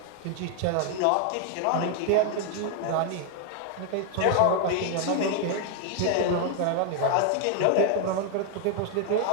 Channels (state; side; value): different; both; correlation 0.00